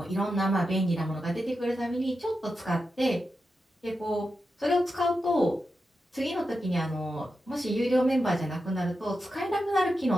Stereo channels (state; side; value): normal; both; correlation 0.89